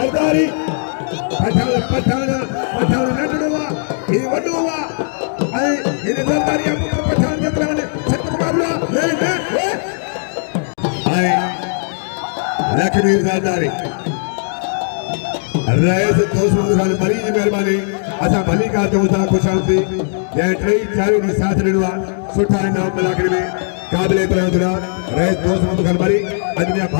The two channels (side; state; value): right; silent; digital silence